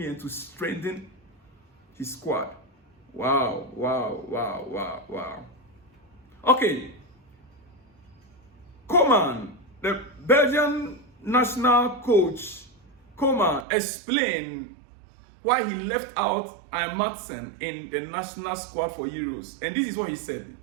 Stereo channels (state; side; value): drops out; left; at 13.7 s